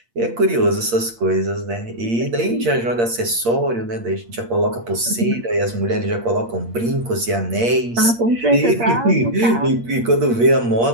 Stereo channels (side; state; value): left; late; 8.6 ms